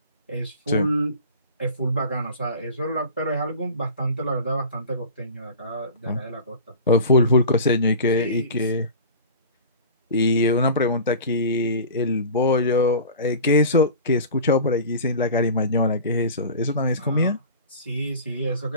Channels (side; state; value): both; inverted; correlation -0.37